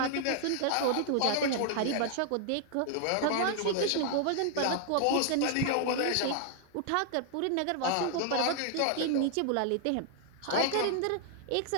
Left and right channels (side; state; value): both; different; correlation 0.00